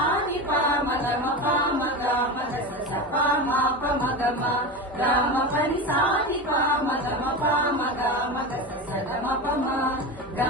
పామ గమ పామ గామ దశ చపా మాప మగమ గామ పని సాని పామ గమ పామ గామ దశ సగమ పమ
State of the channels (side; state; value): both; normal; correlation 0.23